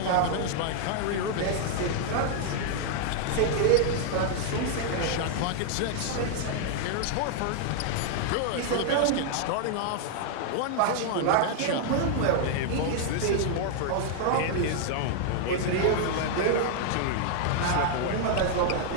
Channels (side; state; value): both; different; correlation 0.00